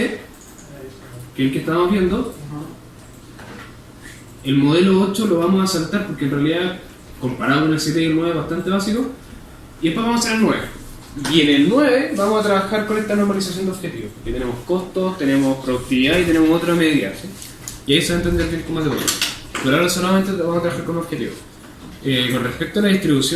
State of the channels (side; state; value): both; identical; correlation 1.00